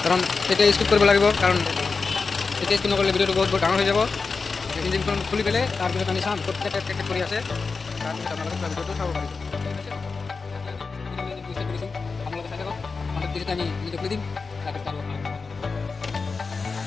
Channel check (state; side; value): quieter; right; 4.5 dB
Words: কাৰণ তেতিয়া স্কিপ কৰিব লাগিব কাৰণ তেতিয়া স্কিপ নকৰিলে ভিডিঅ'টো বহুত ডাঙৰ হৈ যাব ইঞ্জিনখন খুলি পেলাই তাৰপিছত আমি চাম ক'ত কেট কৰি আছে তাৰপিছত আপোনালোকে ভিডিঅ'টো চাব পাৰিব আপোনালোকে চাই থাকক তেতিয়া আমি ভিডিঅ' খুলি দিম তাৰপিছত আৰু